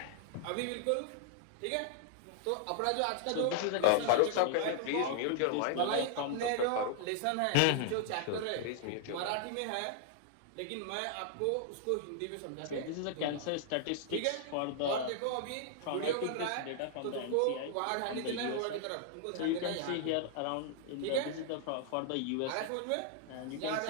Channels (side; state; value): both; different; correlation 0.00